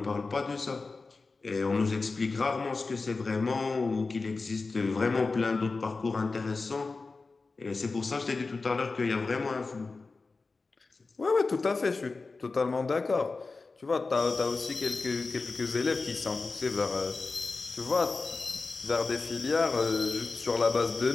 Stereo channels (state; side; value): quieter; right; 3.9 dB